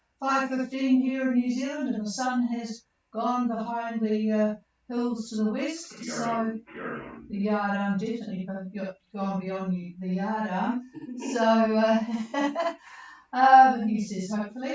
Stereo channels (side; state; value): both; identical; correlation 1.00